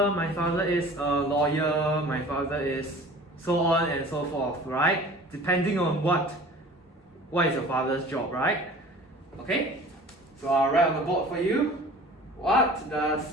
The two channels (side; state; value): both; normal; correlation 0.44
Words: my father is a lawyer, my father is so on and so forth, right? Depending on what is your father's job, right? Okay, so I'll write on the board for you. What